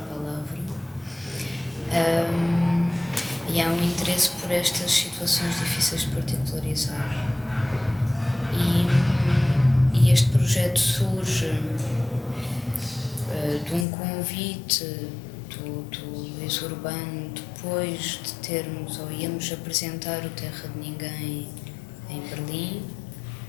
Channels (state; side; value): drops out; right; at 13.9 s